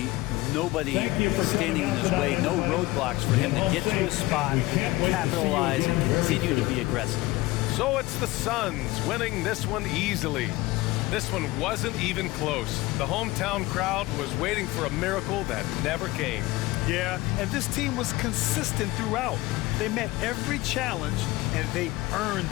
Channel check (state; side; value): quieter; right; 19.6 dB